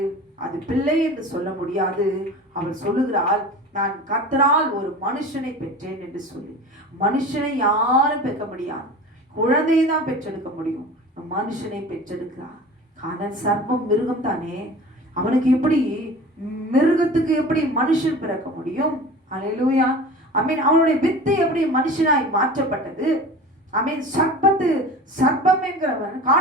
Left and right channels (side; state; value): both; normal; correlation 0.37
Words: அது பிள்ளை என்று சொல்ல முடியாது. அவள் சொல்லுகிறாள், நான் கர்த்தரால் ஒரு மனுஷனை பெற்றேன் என்று சொல்லி. மனுஷனை யாரும் பெற்க முடியாது, குழந்தையை தான் பெற்றெடுக்க முடியும். மனுஷனை பெற்றெடுக்கிறார். காரணம் சர்ப்பம் மிருகம் தானே, அவனுக்கு எப்படி மிருகத்துக்கு எப்படி மனுஷன் பிறக்க முடியும்? அல்லேலூயா. ஆமென். அவனுடைய வித்து எப்படி மனுஷனாய் மாற்றப்பட்டது? ஆமென். சர்ப்பம் என்கிறவன்